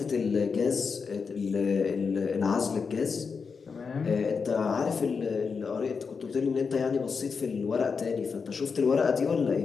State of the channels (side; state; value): right; quieter; 5.4 dB